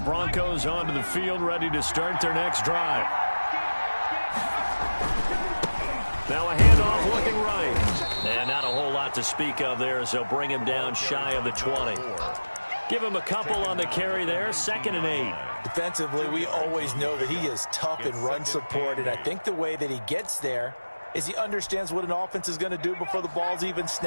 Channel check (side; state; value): both; inverted; correlation -1.00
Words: onto the field, ready to start their next drive. Now a handoff looking right. And not a whole lot to speak of there as they'll bring him down shy of the 20. Give him a couple on the carry there, 2nd and 8. Defensively, we always know that he is tough in run support, and I think the way that he gets there is he understands what an offense is going to do before the ball's even